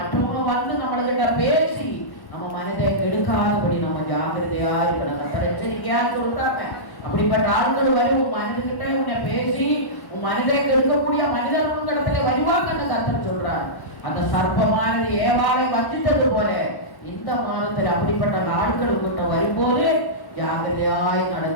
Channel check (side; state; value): right; late; 1.1 ms